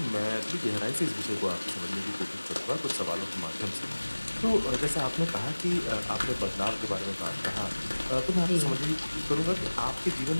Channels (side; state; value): both; inverted; correlation -1.00